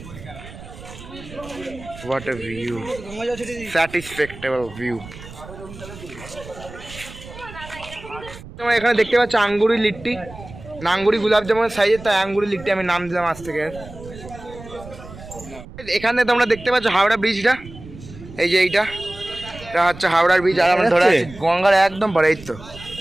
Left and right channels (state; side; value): noise; right; rumble, 16 dB below the sound